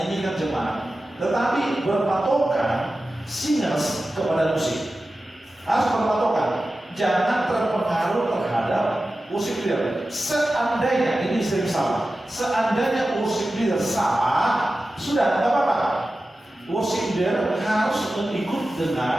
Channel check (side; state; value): both; normal; correlation 0.94